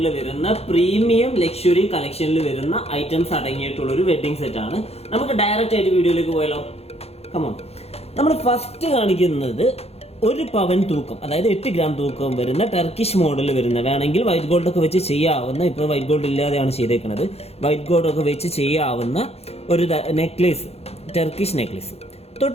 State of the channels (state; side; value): late; right; 0.30 ms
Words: വരുന്ന പ്രീമിയം ലക്ഷറി കളക്ഷനിൽ വരുന്ന ഐറ്റംസ് അടങ്ങിയിട്ടുള്ള ഒരു വെഡിങ് സെറ്റ് ആണ്. നമുക്ക് ഡയറക്റ്റ് ആയിട്ട് വീഡിയോയിലേക്ക് പോയാലോ? കമോൺ. നമ്മൾ ഫസ്റ്റ് കാണിക്കുന്നത് 1 പവൻ തൂക്കം, അതായത് 8 ഗ്രാം തൂക്കം വരുന്ന ടർക്കിഷ് മോഡൽ വരുന്ന, വേണമെങ്കിൽ വൈറ്റ് ഗോൾഡ് ഒക്കെ വെച്ച് ചെയ്യാവുന്ന, ഇപ്പോൾ വൈറ്റ് ഗോൾഡ് ഇല്ലാതെയാണ് ചെയ്തേക്കുന്നത്, വൈറ്റ് ഗോൾഡ് ഒക്കെ വെച്ച് ചെയ്യാവുന്ന ഒരു നെക്ലേസ്, ടർക്കിഷ് നെക്ലേസ്.